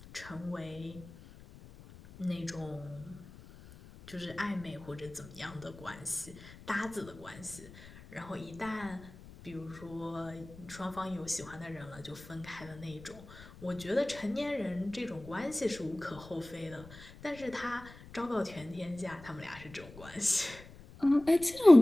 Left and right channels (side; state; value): left; noise; rumble, 18 dB below the sound